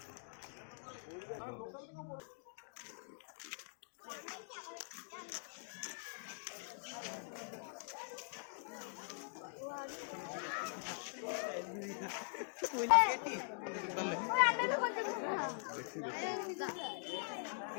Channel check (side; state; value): right; silent; digital silence